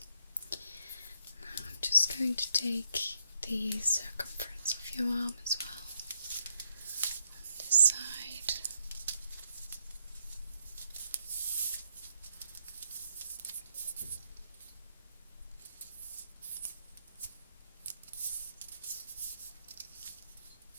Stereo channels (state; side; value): inverted; both; correlation -0.76